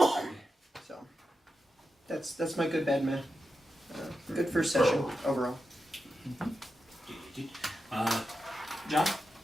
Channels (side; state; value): both; normal; correlation 0.89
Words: So, that's my good bad man. Good first session, overall. John?